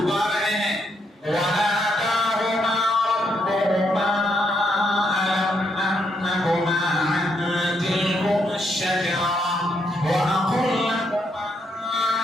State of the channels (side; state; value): both; normal; correlation 0.76